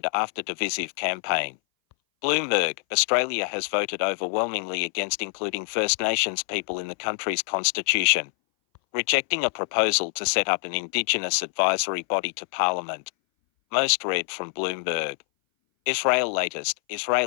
after divisive campaign. Bloomberg, Australia has voted overwhelmingly against including First Nations people in the country's constitution, rejecting a proposal to set up an Indigenous advisory body to Parliament. Most read from Bloomberg. Israel latest,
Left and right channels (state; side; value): silent; right; 60 dB below the other